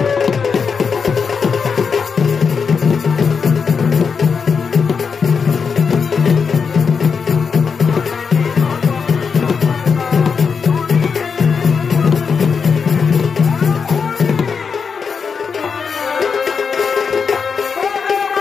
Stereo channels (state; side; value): quieter; right; 5.8 dB